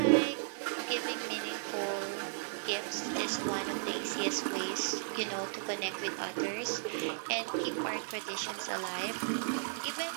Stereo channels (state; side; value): silent; left; 54 dB below the other